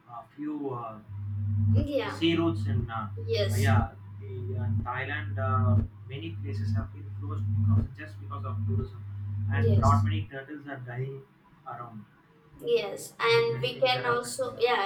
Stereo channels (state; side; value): identical; both; correlation 1.00